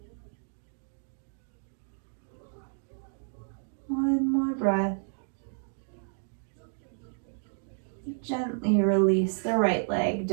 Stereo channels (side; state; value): left; silent; digital silence